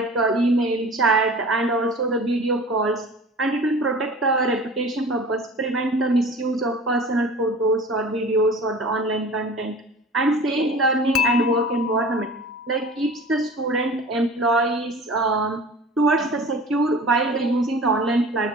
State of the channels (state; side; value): normal; both; correlation 0.41